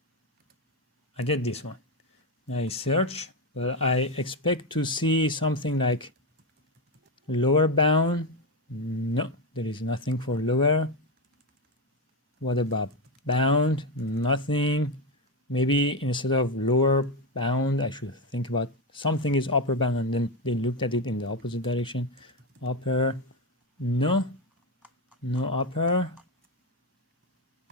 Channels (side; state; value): both; normal; correlation 0.11